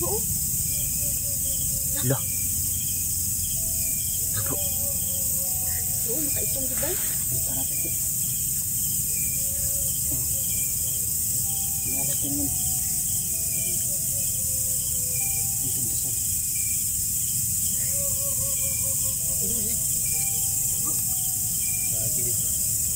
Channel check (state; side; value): noise; right; hiss, 18 dB below the sound